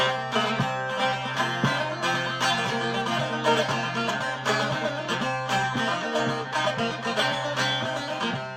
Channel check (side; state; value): both; identical; correlation 1.00